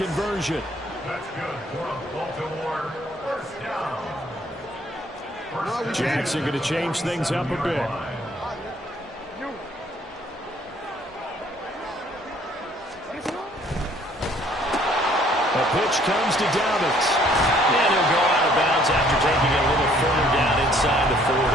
That's good for Baltimore. First down. Jackson going to change things up a bit. A pitch comes to Dobbins. And he'll go out of bounds after taking it a little further down inside the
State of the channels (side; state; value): both; normal; correlation 0.61